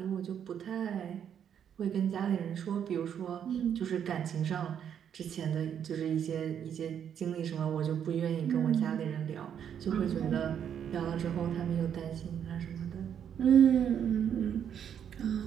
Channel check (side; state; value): left; quieter; 8.7 dB